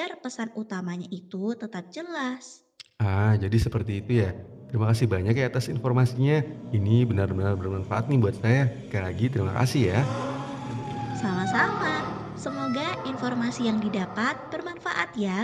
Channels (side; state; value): both; identical; correlation 1.00